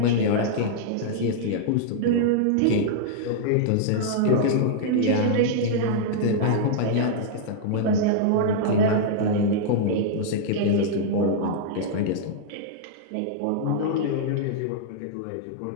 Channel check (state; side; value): different; both; correlation -0.01